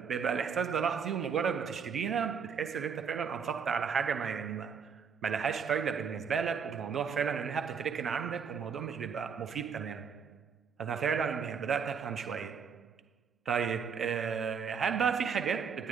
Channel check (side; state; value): left; quieter; 6.4 dB